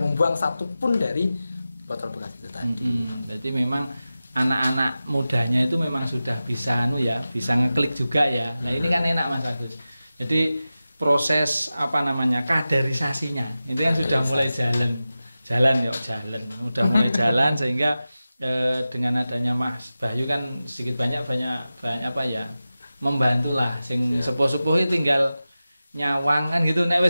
satupun dari botol bekas itu tadi. Jadi memang anak-anak mudanya itu memang sudah bisa bisa ngeklik juga ya. Nah, ini kan enak Mas Agus. Jadi proses kaderisasinya itu yang sudah mulai jalan, udah mulai jalan sehingga dengan adanya Mas Bahyu kan sedikit banyak membantulah sing sepuh-sepuh tinggal nyawang kan gitu, nek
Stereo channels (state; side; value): inverted; both; correlation -0.95